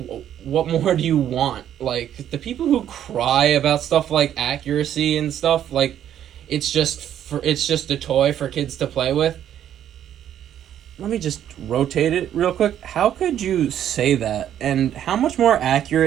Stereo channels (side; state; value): left; quieter; 10.5 dB